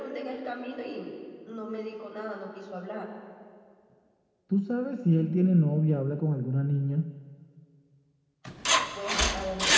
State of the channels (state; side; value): identical; both; correlation 1.00